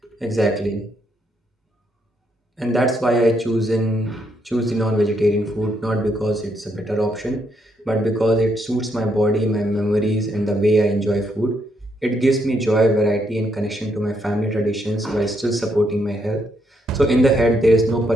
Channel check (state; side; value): normal; both; correlation 0.76